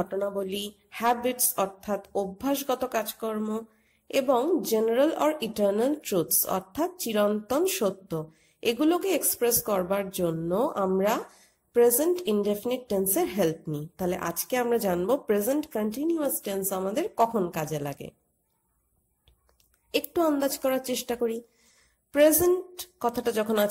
হ্যাবিটস অর্থাৎ অভ্যাসগত কাজকর্ম এবং জেনারেল অর ইটার্নাল ট্রুথস অর্থাৎ চিরন্তন সত্য, এগুলোকে এক্সপ্রেস করবার জন্য আমরা প্রেজেন্ট ইনডেফিনিট টেন্সের হেল্প নিই। তাহলে আজকে আমরা জানবো প্রেজেন্ট কন্টিনিউয়াস টেন্স আমাদের কখন কাজে লাগে। একটু আন্দাজ করার চেষ্টা করি। প্রেজেন্ট কথাটা যখন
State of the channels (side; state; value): both; identical; correlation 1.00